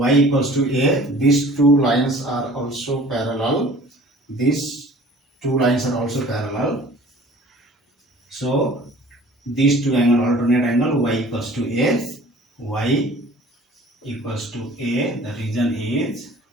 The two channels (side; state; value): both; normal; correlation 0.48